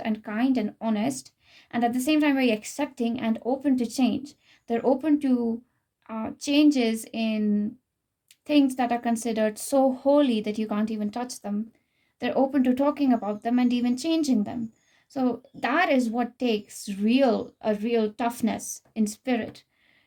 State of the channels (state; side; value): identical; both; correlation 1.00